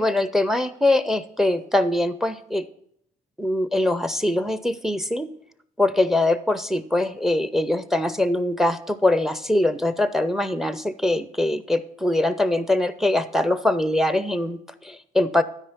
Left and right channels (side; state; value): both; normal; correlation 0.88